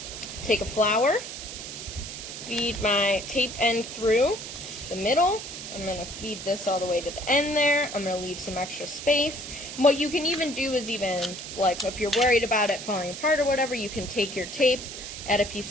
take a flower, feed my tape end through the middle. I'm going to feed this all the way to the end there. I'm going to leave some extra space. And what you can even do is even, like, if you're worried about it falling apart or whatever, you can take your tape, add a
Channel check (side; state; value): right; noise; hiss, 9 dB below the sound